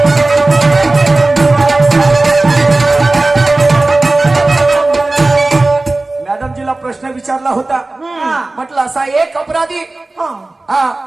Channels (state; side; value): quieter; left; 3.1 dB